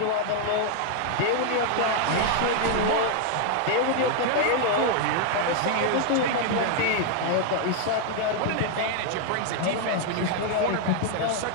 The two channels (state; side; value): different; both; correlation 0.00